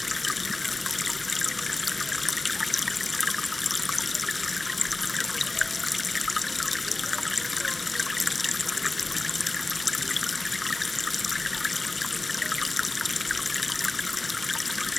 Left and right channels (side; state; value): right; quieter; 3.0 dB